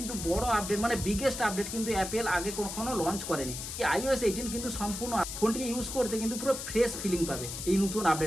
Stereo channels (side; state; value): left; noise; hiss, 7 dB below the sound